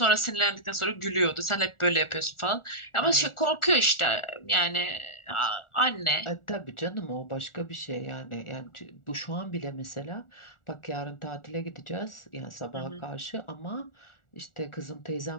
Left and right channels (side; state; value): right; late; 1.4 ms